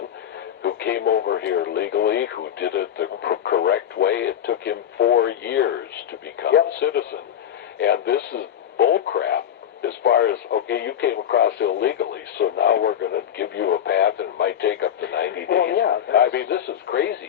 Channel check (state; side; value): quieter; right; 9.8 dB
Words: who came over here legally, who did it the correct way. It took him 4 years to become a citizen. And this is bullcrap as far as, okay, you came across illegally, so now we're going to give you a path and it might take up to 90 days. Well, yeah, I mean, this is crazy.